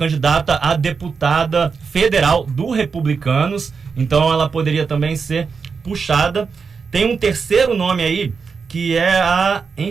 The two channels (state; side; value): quieter; left; 5.4 dB